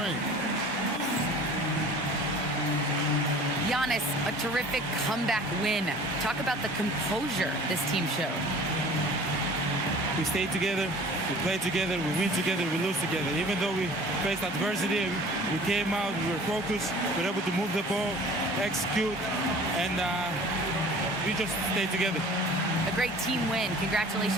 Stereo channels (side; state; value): both; normal; correlation 0.45